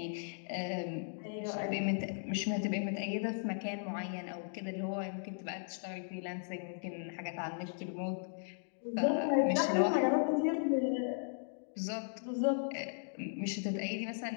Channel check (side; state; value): right; silent; digital silence